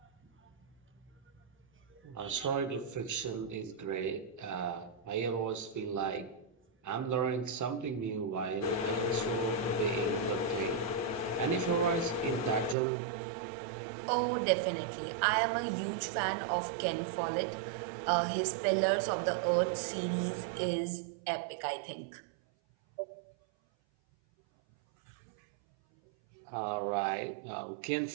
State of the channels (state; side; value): drops out; left; at 12.8 s